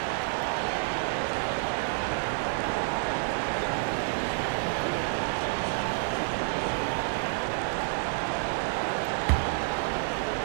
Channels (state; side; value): silent; left; 59 dB below the other